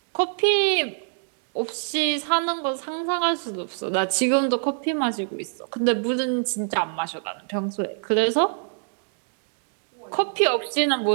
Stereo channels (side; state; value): left; silent; 56 dB below the other